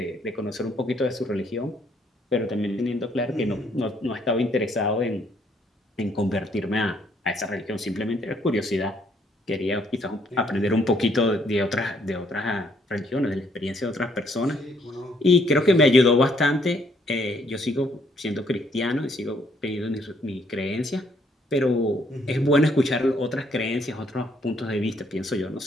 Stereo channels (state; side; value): normal; both; correlation 0.68